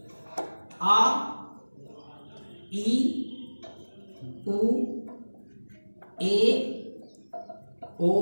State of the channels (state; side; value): inverted; both; correlation -1.00